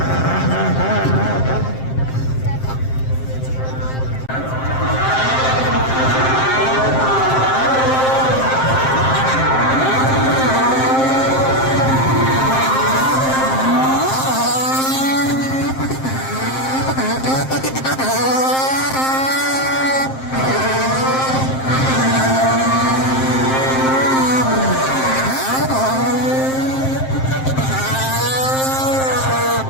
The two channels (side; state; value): right; late; 7.6 ms